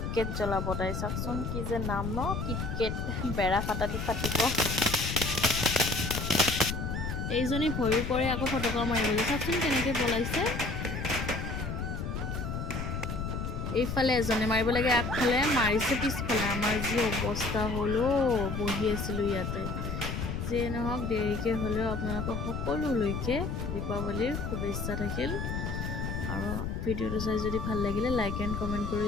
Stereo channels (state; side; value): noise; left; rumble, 3 dB below the sound